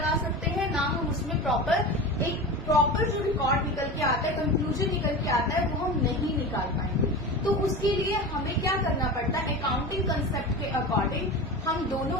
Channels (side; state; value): both; normal; correlation 0.29